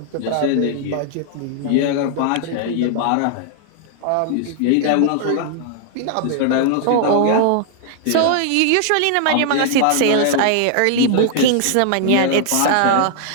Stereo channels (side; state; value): both; different; correlation 0.00